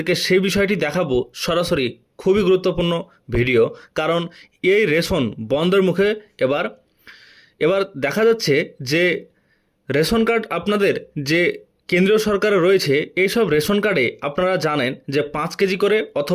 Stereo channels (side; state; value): both; identical; correlation 1.00